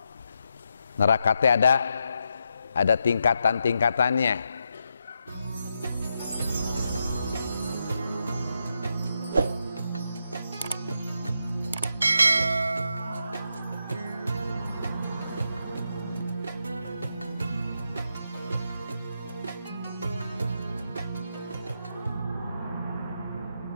Neraka teh ada tingkatan-tingkatannya.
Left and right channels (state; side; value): inverted; both; correlation -0.84